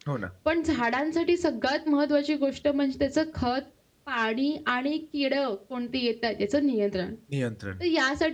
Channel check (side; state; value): both; identical; correlation 1.00